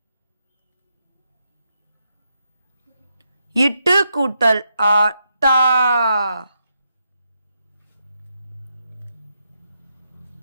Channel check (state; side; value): inverted; both; correlation -0.82